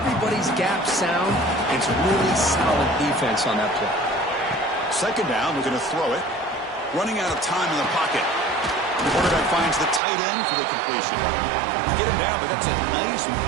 gap sound. It's really solid defense on that play. Second down, we're going to throw it. Running out of time in the pocket. The quarterback finds the tight end for the completion. Get him down, but that's a nice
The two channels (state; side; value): drops out; left; at 10.0 s